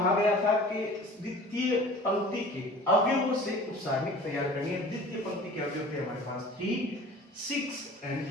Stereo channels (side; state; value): both; normal; correlation 0.43